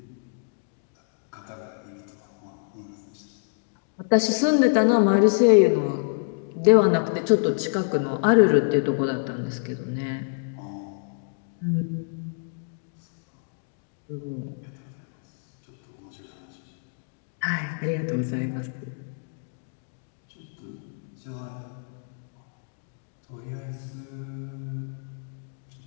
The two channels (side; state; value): right; silent; digital silence